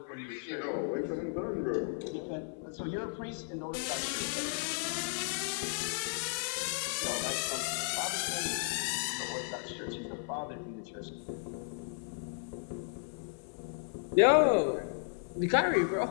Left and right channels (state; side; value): silent; right; 55 dB below the other